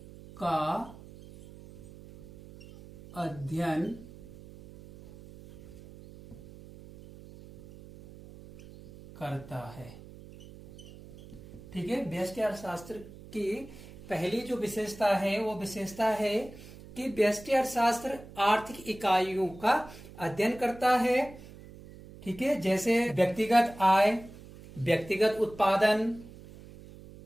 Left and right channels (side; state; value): right; noise; hum, 18 dB below the sound